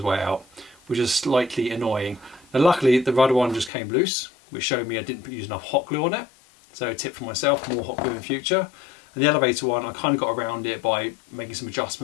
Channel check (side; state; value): right; drops out; at 3.7 s